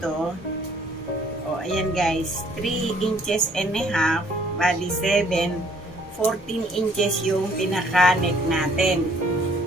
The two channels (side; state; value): both; normal; correlation 0.61